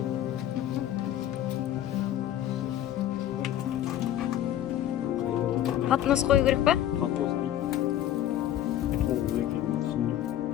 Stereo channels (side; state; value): right; quieter; 11.9 dB